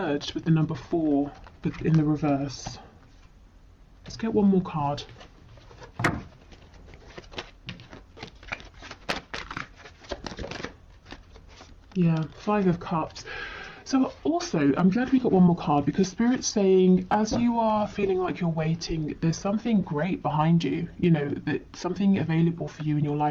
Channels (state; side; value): identical; both; correlation 1.00